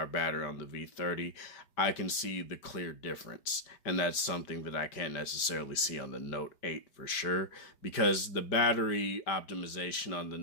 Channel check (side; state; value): right; late; 5.1 ms